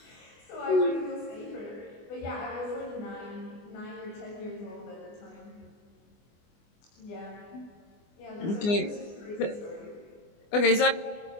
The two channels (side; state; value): right; late; 24 ms